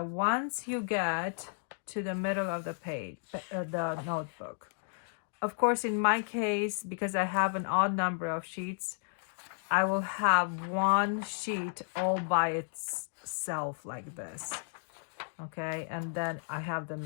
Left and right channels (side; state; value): right; silent; digital silence